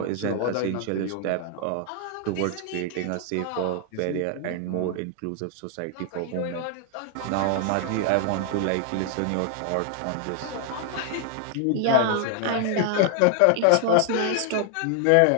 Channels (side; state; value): both; different; correlation 0.00